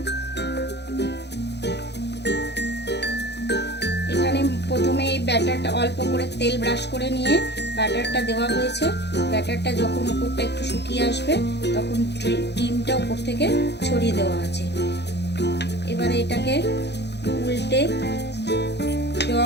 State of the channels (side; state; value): right; late; 0.50 ms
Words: প্রথমে এই ব্যাটারটা অল্প করে তেল ব্রাশ করে নিয়ে ব্যাটারটা দেওয়া হয়েছে। ব্যাটারটা যখন উপরটা একটু শুকিয়ে আসবে তখন ডিমটা উপর থেকে ছড়িয়ে দেওয়া আছে। এবারে এটাকে উল্টে